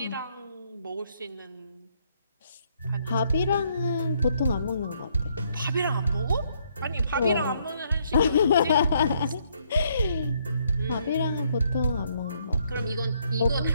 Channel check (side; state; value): both; inverted; correlation -0.71